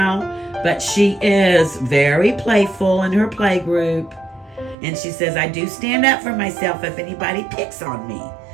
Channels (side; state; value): left; drops out; at 4.8 s